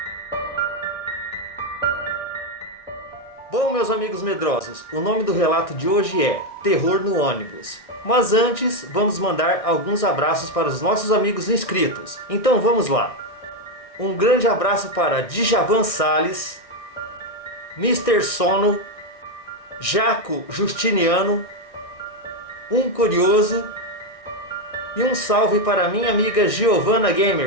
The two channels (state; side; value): late; right; 1.6 ms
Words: Bom, meus amigos medrosos, o nome do relato de hoje é Terror no Ônibus. Mas antes, vamos mandar alguns abraços para os nossos amigos inscritos. Então vamos lá. Um grande abraço para Djavan Salles, Mr. Sono, Jaco Justiniano, Um Curioso e um salve para minha amiga Giovanna